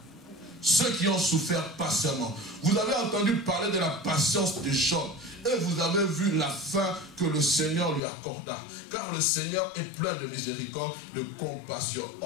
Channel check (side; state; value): right; drops out; at 8.0 s